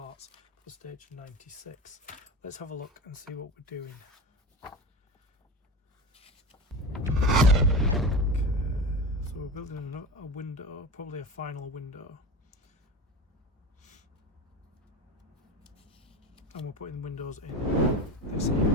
for stage 96. Let's have a look and see what we're doing. Okay, so we're building a window, probably a final window. And we're putting windows in this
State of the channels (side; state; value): both; normal; correlation 0.27